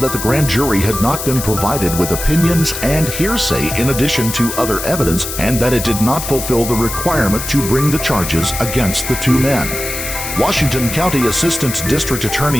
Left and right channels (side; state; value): left; noise; hiss, 6 dB below the sound